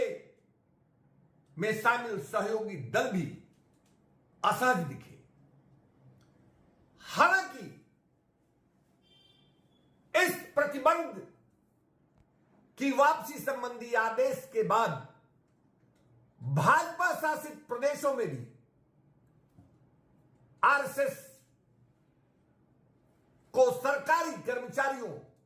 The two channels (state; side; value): identical; both; correlation 1.00